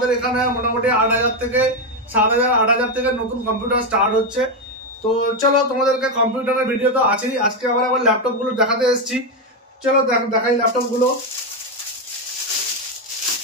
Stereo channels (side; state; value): both; normal; correlation 0.07